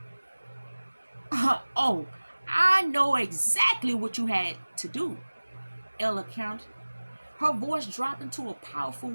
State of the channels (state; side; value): inverted; both; correlation -1.00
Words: Oh, I know exactly what you had to do, Ella countered, her voice dropping to a powerful